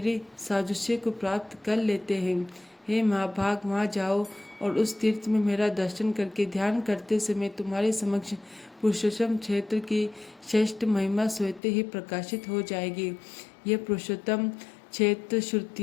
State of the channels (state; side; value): drops out; right; at 11.6 s